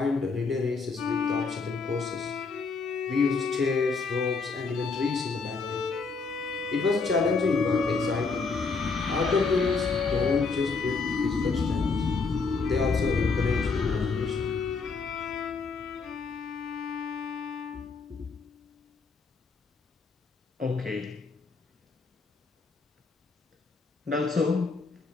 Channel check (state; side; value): quieter; right; 4.5 dB